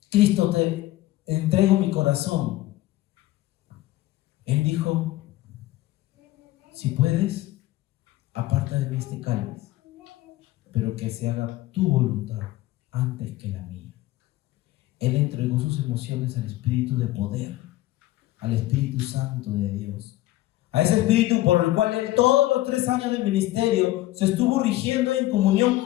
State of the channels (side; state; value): right; quieter; 16.7 dB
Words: Cristo, te entrego mi corazón. Él dijo: si puedes, aparta de mí este cáliz, pero que se haga tu voluntad antes que la mía. Él entregó sus emociones al Espíritu de poder, al Espíritu Santo de Dios, a ese Espíritu por el cual él todos los 3 años de ministerio se estuvo rigiendo en